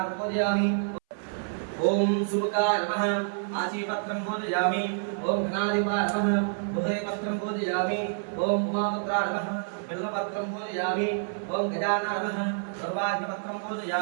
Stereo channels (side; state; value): left; silent; 59 dB below the other